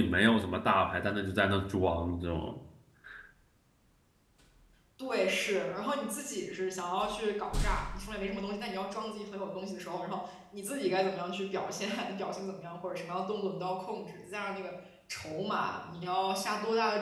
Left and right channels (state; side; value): identical; both; correlation 1.00